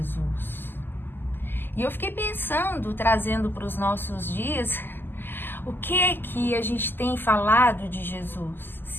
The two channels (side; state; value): right; late; 0.095 ms